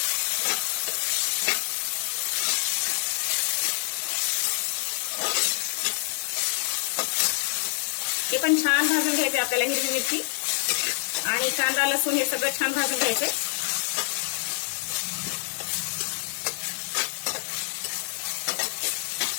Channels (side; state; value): right; silent; digital silence